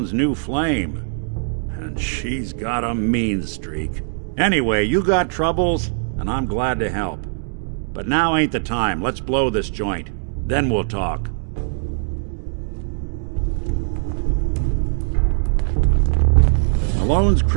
new flame. And she's got a mean streak. Anyway, you got troubles, and I'm glad to help. But now ain't the time. Let's blow this joint. Then we'll talk. Malone's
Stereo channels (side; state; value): left; silent; digital silence